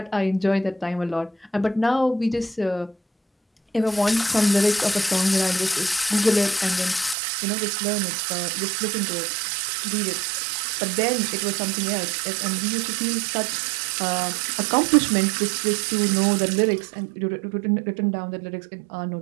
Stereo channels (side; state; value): left; drops out; at 7.2 s